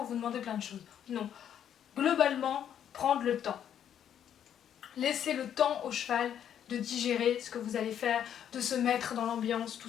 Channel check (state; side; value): quieter; right; 9.5 dB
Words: vous demander plein de choses. Non. Globalement, prendre le temps. Laissez le temps au cheval de digérer ce que vous allez faire, de se mettre dans l'ambiance,